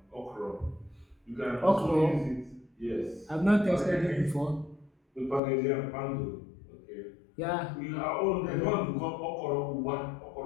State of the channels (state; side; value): drops out; right; at 5.4 s